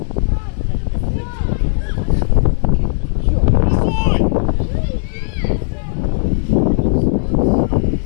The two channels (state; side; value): silent; right; 67 dB below the other